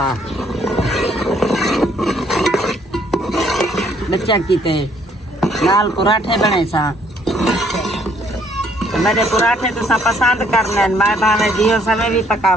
बच्चा कीते नाल पराठे बने सा। मेरे पराठे तुसा पसंद करने, मैं भावे दियो समय भी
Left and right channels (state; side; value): normal; both; correlation 0.65